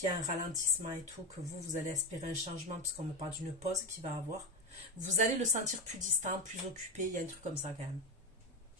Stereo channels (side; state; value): both; normal; correlation 0.16